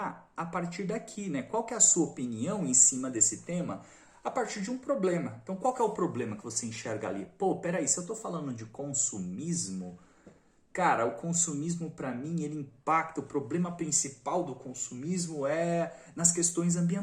a partir daqui, né? Qual que é a sua opinião em cima desse tema a partir de um problema? Então, qual que é o problema que você enxerga ali? Pô, peraí, se eu estou falando de consumismo, cara, o consumismo para mim, ele impacta, o problema principal do consumismo é nas questões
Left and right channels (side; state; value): both; identical; correlation 1.00